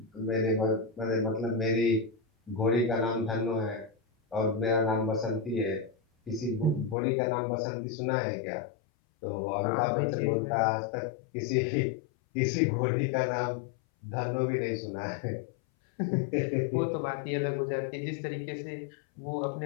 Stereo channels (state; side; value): drops out; right; at 7.0 s